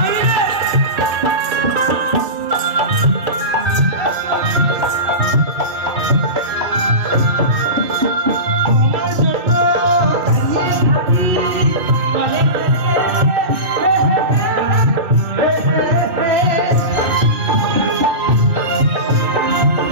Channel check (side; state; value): left; late; 2.8 ms